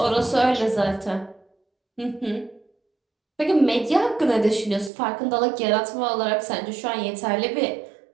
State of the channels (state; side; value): drops out; left; at 4.9 s